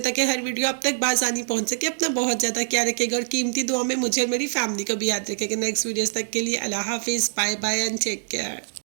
ताकि हर वीडियो आप तक बासानी पहुंच सके। अपना बहुत ज़्यादा ख्याल रखिएगा और कीमती दुआ में मुझे और मेरी फैमिली को भी याद रखेगा। नेक्स्ट वीडियोस तक के लिए अल्लाह हाफिज़, bye bye and take care.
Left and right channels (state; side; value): silent; left; digital silence